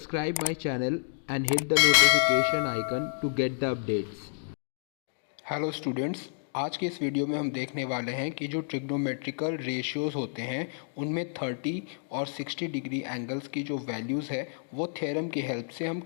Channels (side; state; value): right; silent; digital silence